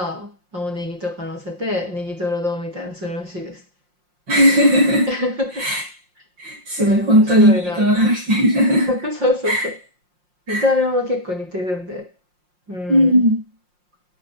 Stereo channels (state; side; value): late; left; 5.6 ms